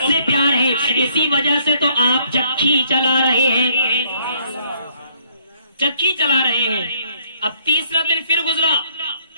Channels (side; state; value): both; inverted; correlation -0.67